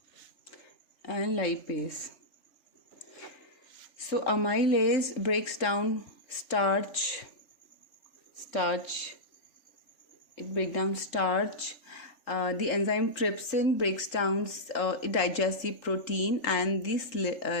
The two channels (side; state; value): right; late; 3.4 ms